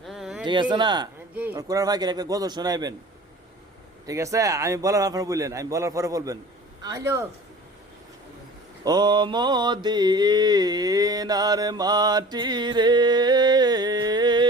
ঠিক আছে না? জি কোরআন ফাঁকের একটা গজল শোনাইবেন, ঠিক আছে? আমি বলার আপনার বললেন, আমি বলার পরে বলবেন। হ্যালো ও মদিনার মাটি রে,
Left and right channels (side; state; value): both; normal; correlation 0.42